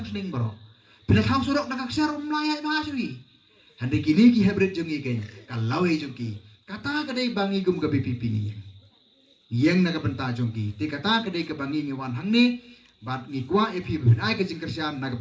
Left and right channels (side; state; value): both; identical; correlation 1.00